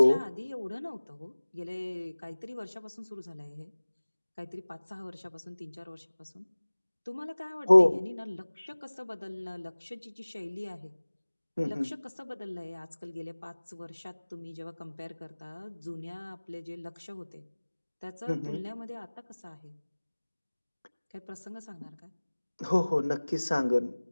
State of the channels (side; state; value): both; inverted; correlation -1.00